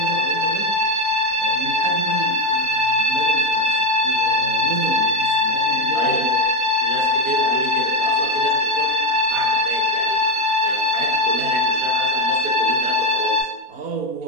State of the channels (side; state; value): left; late; 4.2 ms